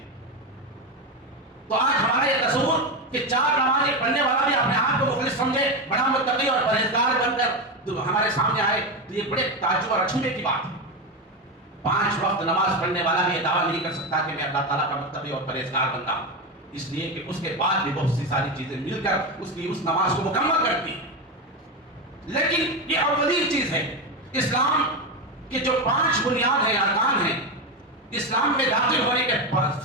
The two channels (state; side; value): normal; both; correlation 0.15